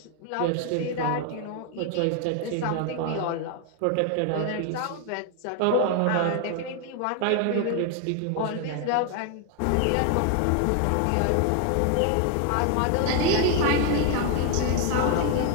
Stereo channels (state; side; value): different; both; correlation 0.01